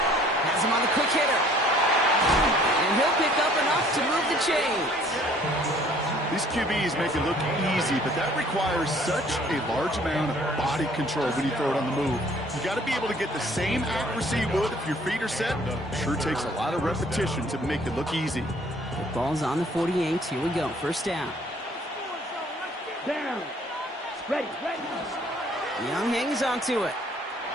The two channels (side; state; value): both; normal; correlation 0.57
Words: Has him on the quick hitter. And he'll pick up enough to move the chains. These QBs make it look easy, but that requires such a large amount of body control when you throw it on the move. You got to be able to get the same accuracy you would if your feet are set. Sure takes a lot of repetition to make it look easy. The ball's on the 48. Here we go. 1st down. Down. Ready, ready. Young hangs onto it.